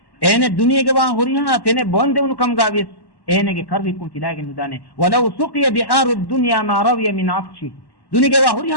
اين الدنيا جوا هوريها تنه بوندون كم غاويس اينගේ කරවිකුම් තිලාගෙන නුදානේ ولو سقي بحار الدنيا ما روي من عطش دنيا جوا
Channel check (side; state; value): right; late; 1.1 ms